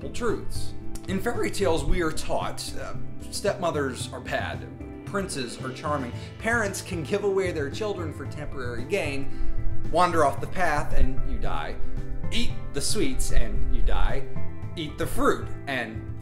truths. In fairy tales, we are taught stepmothers are bad, princes are charming, parents can give away their children for temporary gain, wander off the path and you die, eat the sweets and you die, eat the fruit and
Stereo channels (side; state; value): both; identical; correlation 1.00